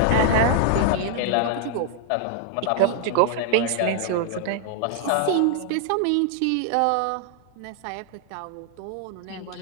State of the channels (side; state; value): both; different; correlation 0.00